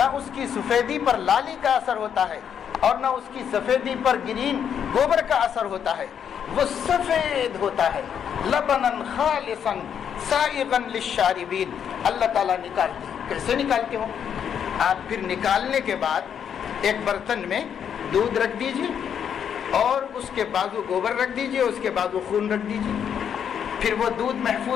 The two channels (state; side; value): quieter; right; 8.2 dB